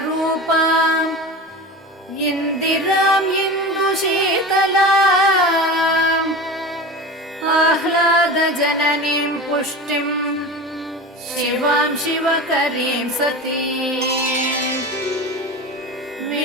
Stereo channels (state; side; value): normal; both; correlation 0.29